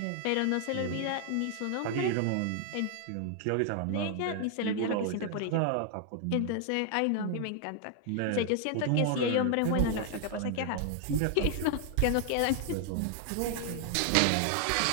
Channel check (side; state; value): both; different; correlation 0.00